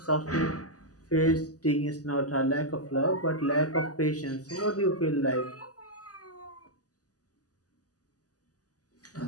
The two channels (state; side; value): late; right; 0.67 ms